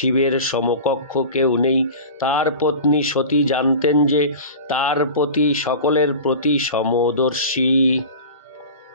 সমকক্ষ কেউ নেই। তার পত্নী সতী জানতেন যে তার পতি সকলের প্রতি সমদর্শী।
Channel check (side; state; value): both; inverted; correlation -0.34